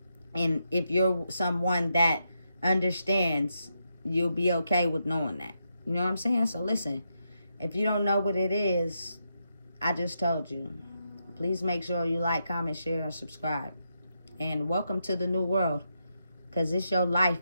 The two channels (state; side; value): inverted; both; correlation -0.83